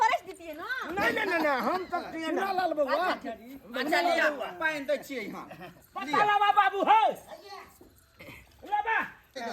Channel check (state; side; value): identical; both; correlation 1.00